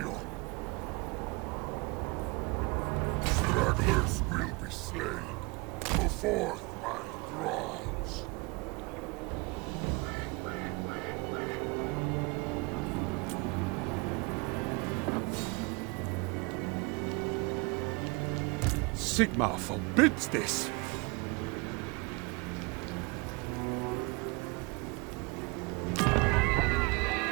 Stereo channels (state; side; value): quieter; left; 28.7 dB